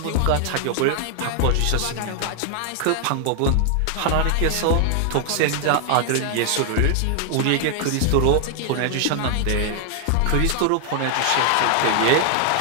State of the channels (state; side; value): different; both; correlation 0.00